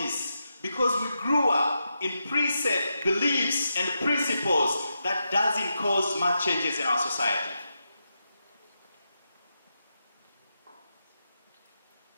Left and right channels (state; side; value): inverted; both; correlation -0.86